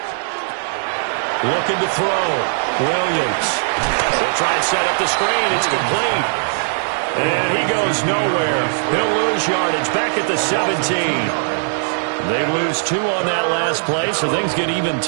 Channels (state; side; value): silent; left; 67 dB below the other